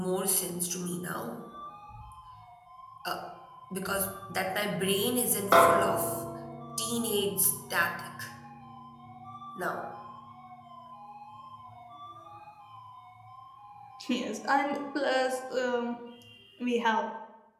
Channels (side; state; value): both; identical; correlation 1.00